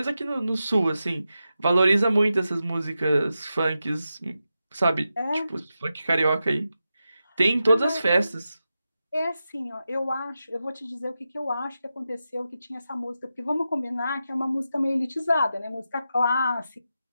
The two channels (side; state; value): both; inverted; correlation -0.90